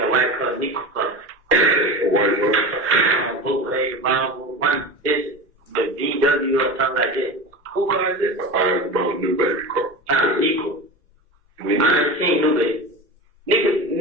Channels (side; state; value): both; normal; correlation 0.28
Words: white car, Nico car. A white one? Bootleg, Marvel, one, this, the VW or something like that. Who car is this? I asked about New Baby car. Nico. Nico. I ain't seen New Baby.